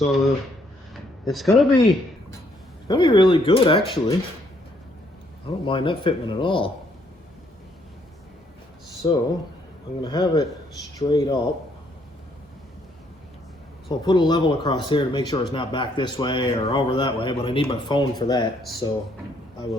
it's gonna be really good actually. I don't mind that fitment at all. So I'm gonna have it straight up. So I'll put a level across here to make sure it's not back this way or over that way, but I need my phone for that, so I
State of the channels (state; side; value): normal; both; correlation 0.68